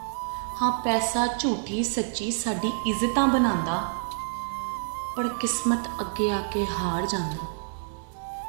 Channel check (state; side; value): silent; left; digital silence